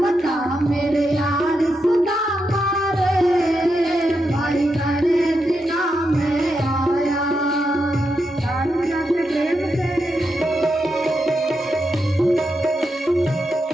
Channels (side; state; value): both; normal; correlation 0.85